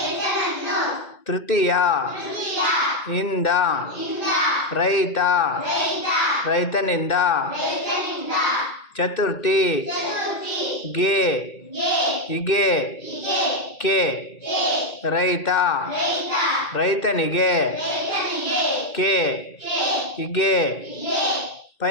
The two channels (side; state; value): right; late; 2.1 ms